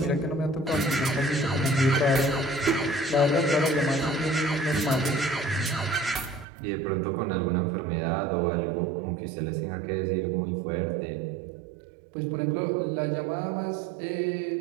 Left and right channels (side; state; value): left; drops out; at 6.5 s